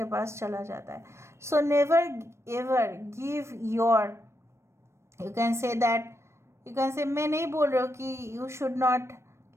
पास चला जाता है। So never ever give your, you can say that, you can से, मैं नहीं बोल रहा हूँ कि you should not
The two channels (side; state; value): left; late; 0.13 ms